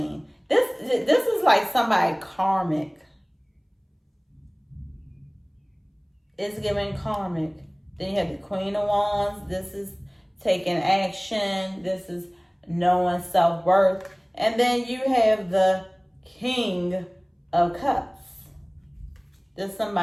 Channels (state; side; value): identical; both; correlation 1.00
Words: This is like somebody karmic. It's giving karmic. Then you have the Queen of Wands. This is taking action. This is knowing self-worth. And then you have the King of Cups. There's